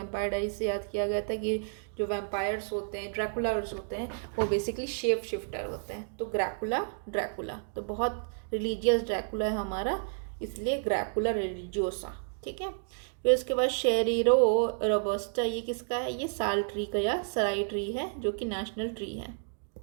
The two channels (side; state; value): left; silent; digital silence